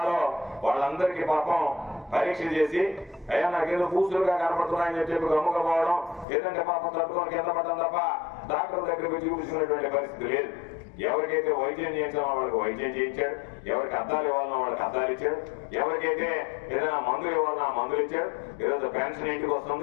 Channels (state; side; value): drops out; right; at 6.2 s